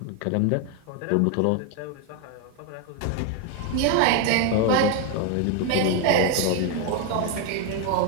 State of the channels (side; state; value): both; different; correlation 0.01